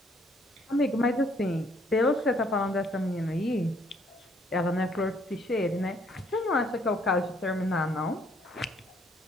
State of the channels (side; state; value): both; normal; correlation 0.65